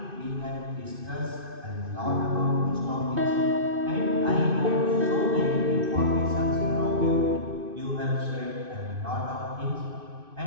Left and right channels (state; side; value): late; left; 2.5 ms